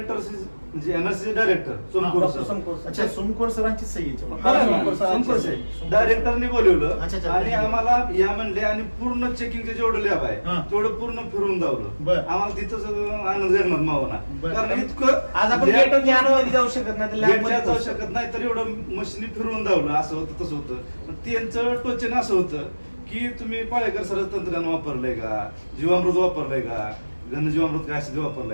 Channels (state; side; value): inverted; both; correlation -1.00